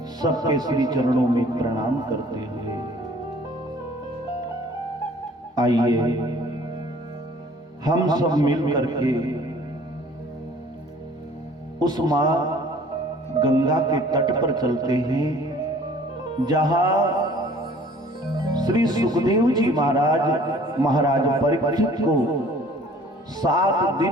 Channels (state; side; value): normal; both; correlation 0.53